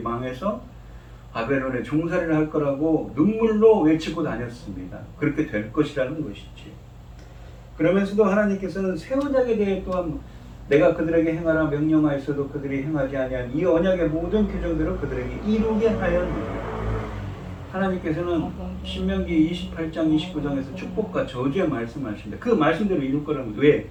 망해서 바벨론에 종살이를 할 거라고 눈물로 외치고 다녔습니다. 그렇게 될 것이라는 것이지. 그러면서도 하나님께서는 새 언약에 대해 또한 내가 그들에게 행하라 명령하였어도 그들이 행하지 아니한 이 언약의 모든 규정대로 그들에게 이루게 하였느니라. 하나님께서는 신명기 28장 29장에서 축복과 저주의 말씀하십니다. 그 말씀대로 이룰 거라면 왜?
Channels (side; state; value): both; identical; correlation 1.00